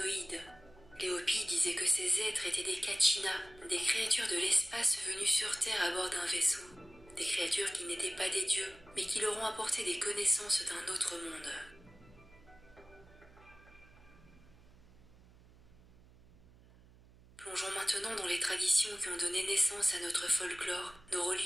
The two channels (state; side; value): noise; right; hum, 24 dB below the sound